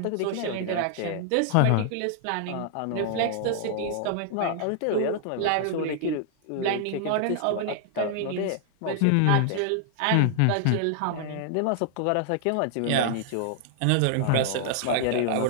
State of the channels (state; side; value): different; both; correlation -0.01